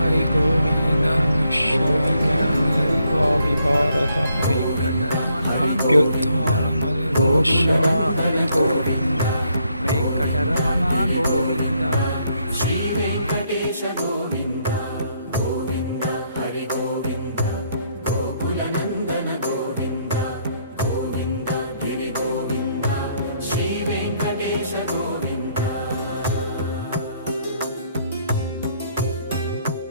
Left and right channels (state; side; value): inverted; both; correlation -0.72